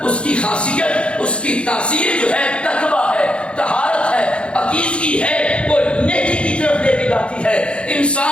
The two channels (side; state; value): right; late; 0.058 ms